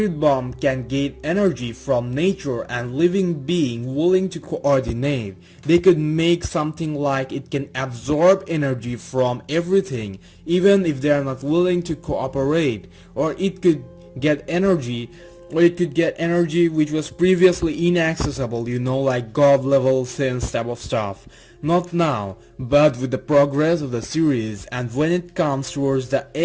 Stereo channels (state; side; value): identical; both; correlation 1.00